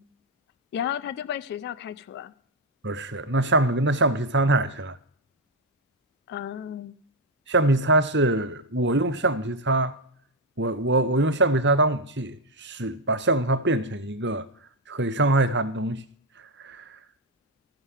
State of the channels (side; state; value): both; normal; correlation 0.05